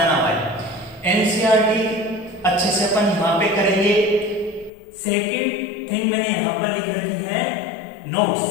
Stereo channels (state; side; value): drops out; right; at 4.7 s